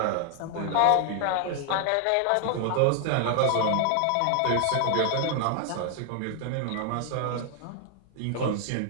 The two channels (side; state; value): both; different; correlation 0.00